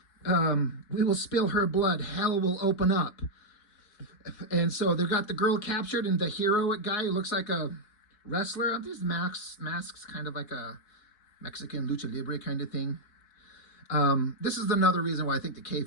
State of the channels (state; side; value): late; right; 4.6 ms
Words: We will spill her blood, hell will open up. And so they've got the girl captured, and the hero guy who looks like a wrestler. Aren't these masks kind of like a Mexican lucha libre kind of thing? This is another reason why I think the